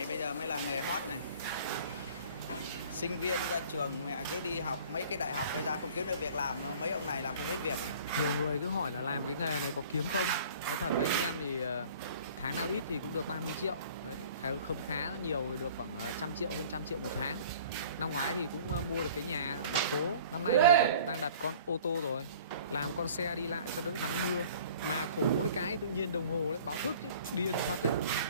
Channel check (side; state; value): both; inverted; correlation -0.49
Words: bây giờ mới là nghề hot này. Sinh viên ra trường mẹ cứ đi học mấy cái đại học bây giờ không kiếm được việc làm, mấy ông này làm không biết việc. Nhiều người cứ hỏi là làm cái nghề này có kiếm không. Nói thật với anh em thì tháng nào ít thì cũng được 30 triệu. Đấy, không khá nhiều thì được khoảng 100 triệu, hơn 100 triệu một tháng. Năm ngoái thì cũng mua được cái nhà thành phố. Năm nay thì đang đặt con ô tô rồi, làm con xe đi lại cho đỡ nắng mưa. Mà khổ mỗi cái tự nhiên đồng hồ lại báo thức điên phát đấy.